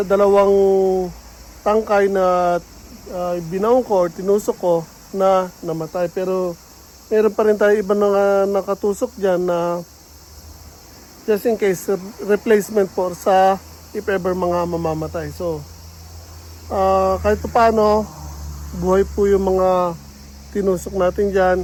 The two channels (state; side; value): identical; both; correlation 1.00